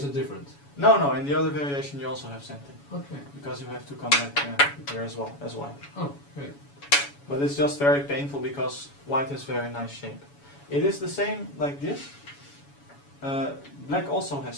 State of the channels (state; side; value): late; right; 7.1 ms